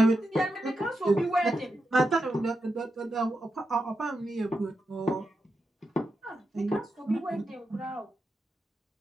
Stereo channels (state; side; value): normal; both; correlation 0.87